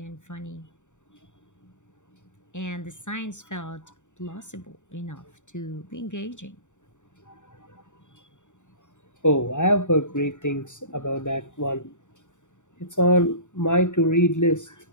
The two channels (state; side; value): late; right; 0.85 ms